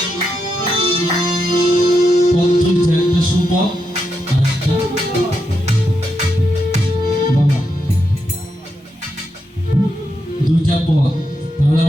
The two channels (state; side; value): normal; both; correlation 0.84